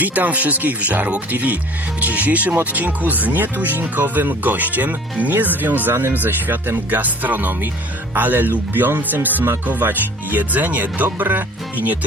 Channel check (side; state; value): both; normal; correlation 0.48